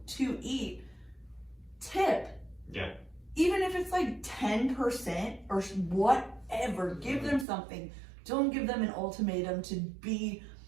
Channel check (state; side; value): drops out; left; at 7.5 s